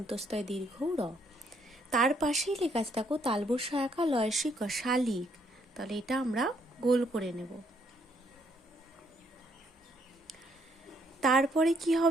দীর্ঘ র। তার পাশেই লেখা আছে, দেখো, তালবর সহায়কা লয়সী ক, শালিক। তাহলে এটা আমরা গোল করে নেব। তারপরে কি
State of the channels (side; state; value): both; normal; correlation 0.71